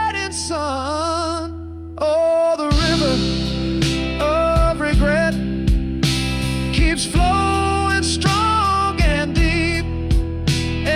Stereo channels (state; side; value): identical; both; correlation 1.00